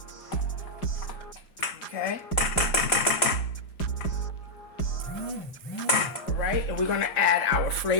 Okay. All right, and we're going to add our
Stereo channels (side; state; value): right; late; 4.9 ms